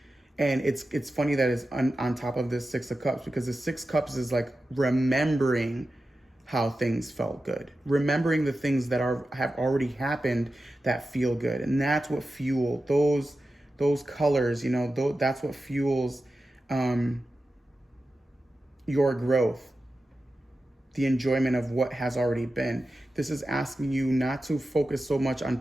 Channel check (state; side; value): normal; both; correlation 0.93